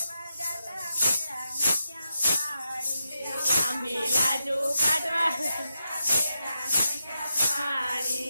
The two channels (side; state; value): both; inverted; correlation -0.87